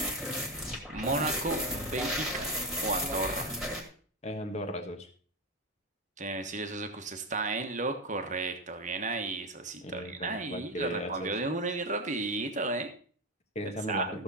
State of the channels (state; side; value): normal; both; correlation 0.13